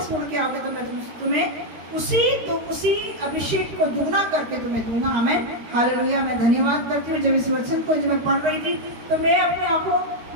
मुड़ के आओगे तो मैं तुम्हें उसी अभिषेक को दुगना करके तुम्हें दूंगा। हमें हालेलुया। मैं धन्यवाद करती हूँ। जब इस वचन को जब मैं पढ़ रही थी तो मैं अपनी आंखों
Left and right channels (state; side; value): late; left; 13 ms